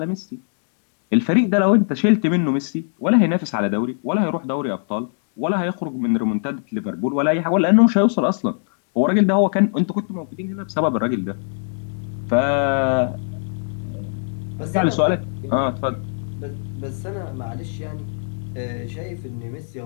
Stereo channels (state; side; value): silent; right; digital silence